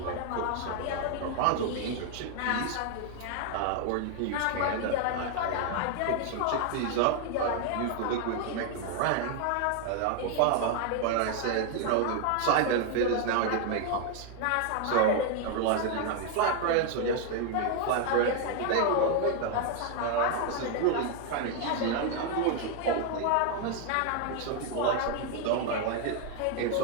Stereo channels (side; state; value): both; different; correlation 0.00